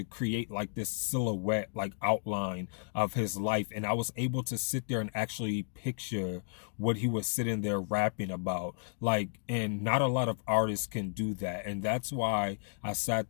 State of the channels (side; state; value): right; silent; digital silence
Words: create like this silhouette, like outline of his life. And I was able to sit there and actually picture what he was sitting there rapping about. Like, and not a lot of artists can do that. And that's why I sat